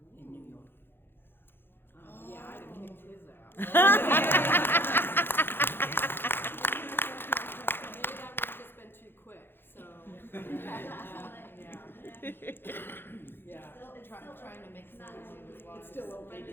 in New York. Yeah, I'd have kicked his ass. Maybe that would have just been too quick, so. Yeah. Trying to make sense as well. It's still open.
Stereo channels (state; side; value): late; right; 0.10 ms